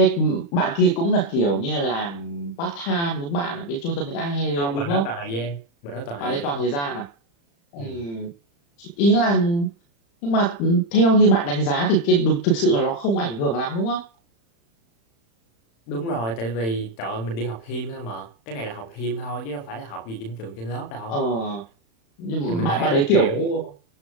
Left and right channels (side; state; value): right; late; 35 ms